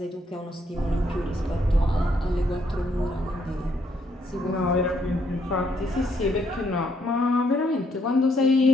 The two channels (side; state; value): both; normal; correlation 0.72